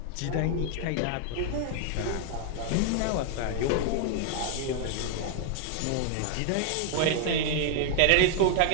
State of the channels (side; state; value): both; different; correlation 0.00